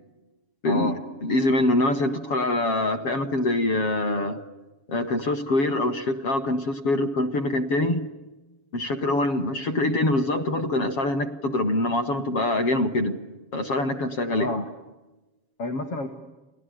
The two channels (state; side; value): late; right; 7.3 ms